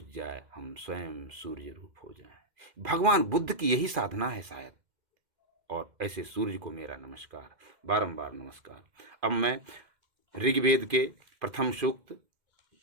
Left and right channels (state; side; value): late; left; 2.1 ms